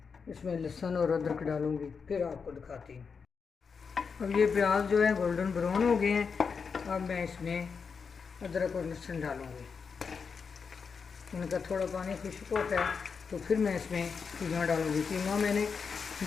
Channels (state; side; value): quieter; right; 5.7 dB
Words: इसमें लहसुन और अदरक डालूँगी, फिर आपको दिखाती हूँ। अब ये प्याज जो है गोल्डन ब्राउन हो गए हैं। अब मैं इसमें अदरक और लहसुन डालूँगी। इनका थोड़ा पानी खुश्क होता है तो फिर मैं इसमें कीमा डालूँगी। कीमा मैंने